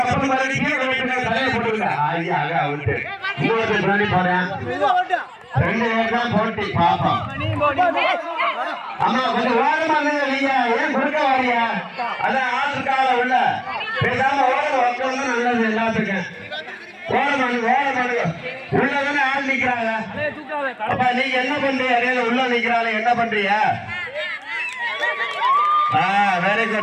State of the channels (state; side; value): identical; both; correlation 1.00